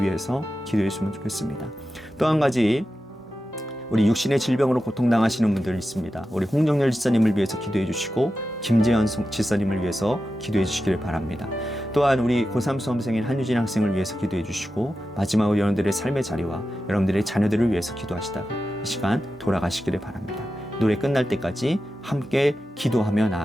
위해서 기도했으면 좋겠습니다. 또 한 가지 우리 육신의 질병으로 고통당하시는 분들 있습니다. 우리 홍정열 지사님을 위해서 기도해 주시고 김재현 지사님을 위해서 기도해 주시기를 바랍니다. 또한 우리 고3 수험생인 한유진 학생을 위해서 기도해 주시고 마지막으로 여러분들의 삶의 자리와 여러분들의 자녀들을 위해서 기도하시다가 이 시간 돌아가시기를 바랍니다. 노래 끝날 때까지 함께 기도하며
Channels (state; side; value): normal; both; correlation 0.91